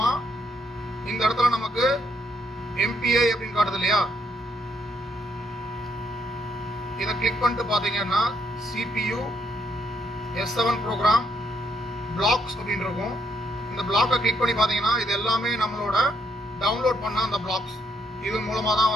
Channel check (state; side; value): normal; both; correlation 0.74